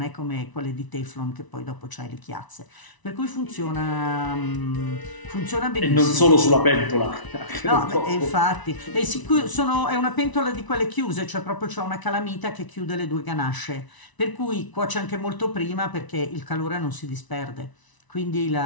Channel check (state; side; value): late; right; 1.0 ms